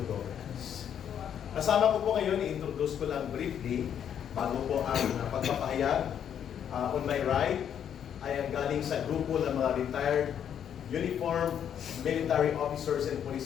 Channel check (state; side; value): quieter; right; 9.0 dB